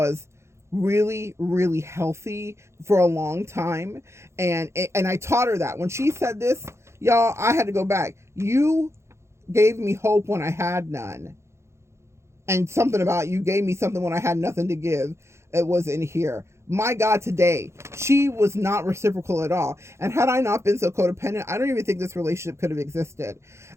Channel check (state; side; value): late; left; 0.13 ms